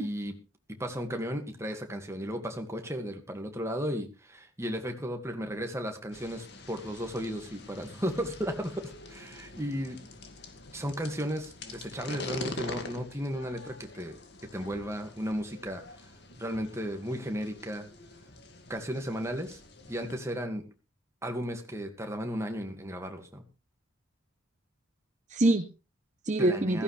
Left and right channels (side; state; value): both; normal; correlation 0.68